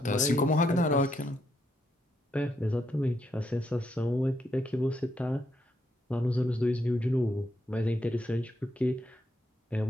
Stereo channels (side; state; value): both; normal; correlation 0.78